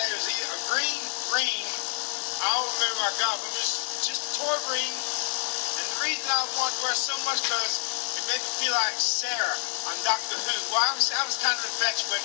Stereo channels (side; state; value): right; silent; digital silence